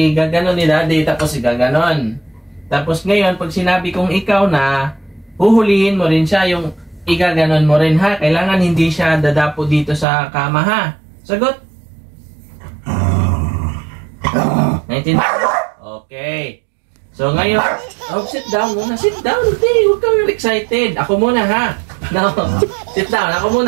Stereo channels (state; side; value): drops out; left; at 10.1 s